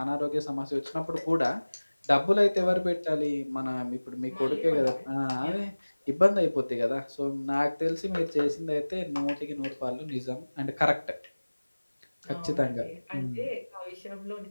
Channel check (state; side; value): inverted; both; correlation -1.00